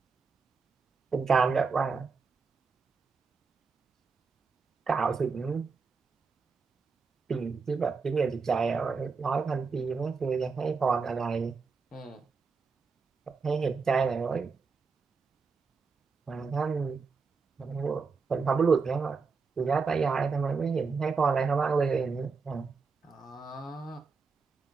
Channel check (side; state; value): left; quieter; 4.9 dB